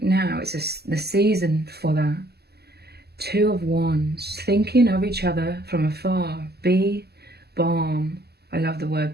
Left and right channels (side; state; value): left; late; 0.47 ms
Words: now. It's the season for that. Two of Wands, thinking of each other from afar. Be balm. I love the